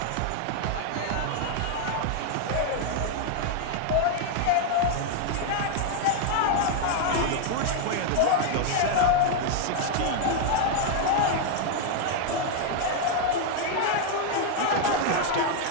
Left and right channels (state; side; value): different; both; correlation 0.00